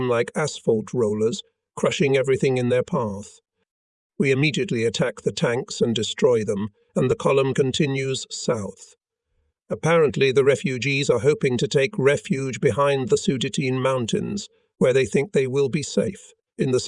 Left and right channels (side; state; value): both; identical; correlation 1.00